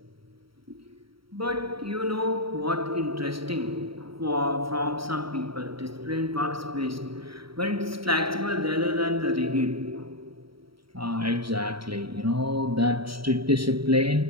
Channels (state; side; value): late; left; 0.75 ms